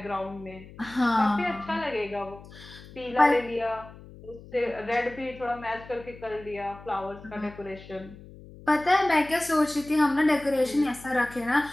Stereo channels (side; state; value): left; noise; hum, 18 dB below the sound